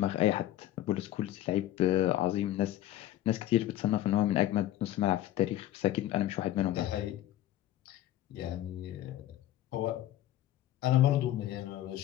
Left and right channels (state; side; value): quieter; right; 13.5 dB